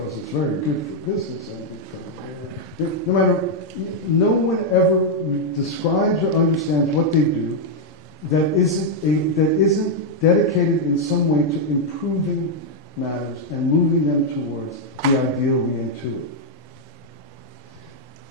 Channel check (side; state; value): both; normal; correlation -0.02